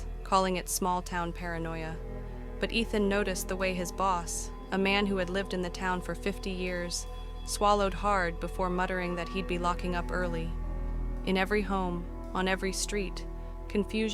calling it small-town paranoia. But Ethan noticed the way his boss, a man who had lived in the town for 50 years, swallowed hard before muttering that he'd be locking up early. In every home, on every street,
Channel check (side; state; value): both; identical; correlation 1.00